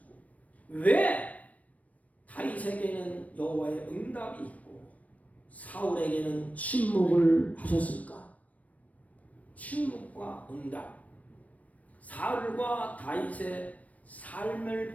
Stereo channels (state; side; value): late; right; 0.069 ms